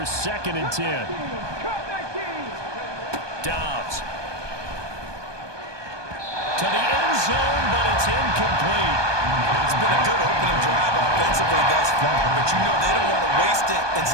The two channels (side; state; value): left; late; 1.2 ms